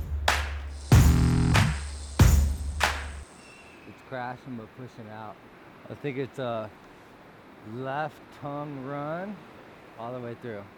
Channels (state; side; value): identical; both; correlation 1.00